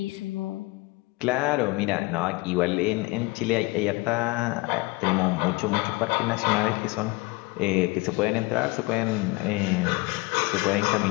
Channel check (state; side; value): quieter; right; 24.2 dB